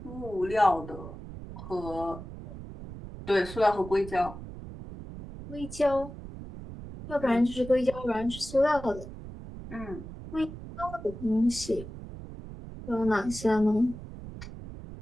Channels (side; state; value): right; noise; rumble, 12 dB below the sound